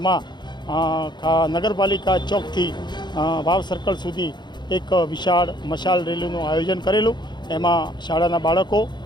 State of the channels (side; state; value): right; late; 0.21 ms